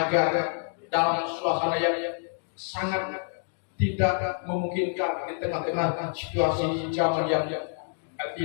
dalam suasana yang sangat tidak memungkinkan, di tengah-tengah situasi zaman yang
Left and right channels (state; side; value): silent; right; 60 dB below the other